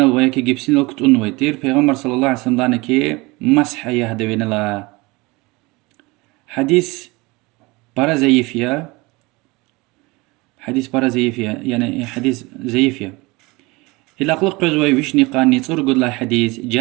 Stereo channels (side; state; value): left; quieter; 23.8 dB